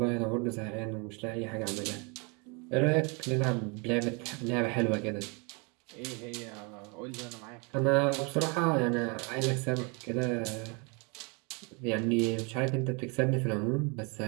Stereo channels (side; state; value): left; quieter; 32.0 dB